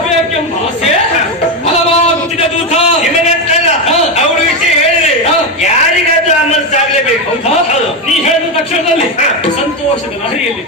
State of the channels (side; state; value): both; normal; correlation 0.10